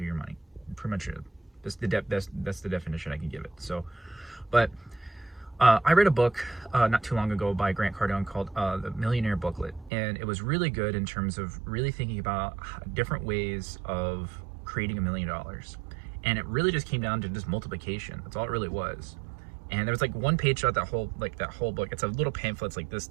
your money, pretty much it. That's the definition I can give it. So, but I read a book not too long ago by Grant Cardone called The Millionaire Booklet, and it was really good in terms of really thinking about different ways of creating $1 million. And it really just came down to just multiplication. That's all it really was. And there was like one page throughout that whole book. It's a little pamphlet. It's like this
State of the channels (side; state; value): left; drops out; at 9.9 s